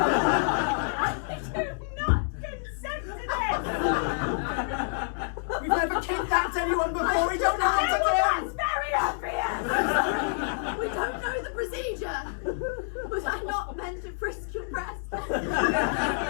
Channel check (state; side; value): silent; right; digital silence